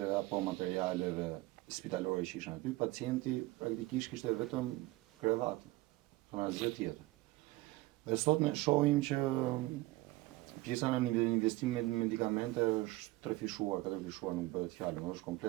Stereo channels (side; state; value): left; quieter; 19.7 dB